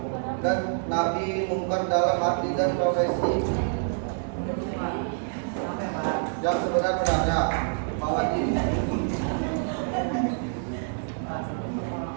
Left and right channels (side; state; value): left; silent; digital silence